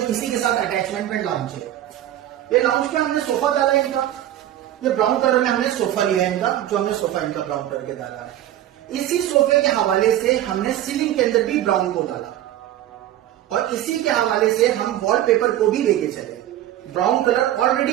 इसी के साथ अटैचमेंट में लाउंज है। ये लाउंज पे हमने सोफा डाला है इनका, ये ब्राउन कलर में हमने सोफा लिया है इनका, जो हमने सोफा इनका ब्राउन कलर के डाला है। इसी सोफे के हवाले से हमने सीलिंग के अंदर भी ब्राउन को डाला और इसी के हवाले से हम वॉलपेपर को भी लेके चले। ब्राउन कलर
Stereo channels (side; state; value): left; quieter; 12.7 dB